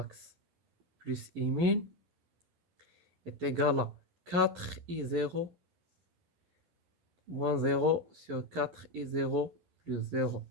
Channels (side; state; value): left; late; 12 ms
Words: plus I min est égal à 4I0 moins 0 sur 4I0 plus 0